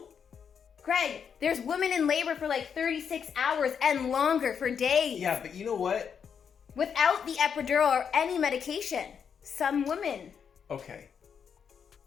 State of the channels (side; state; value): right; quieter; 7.1 dB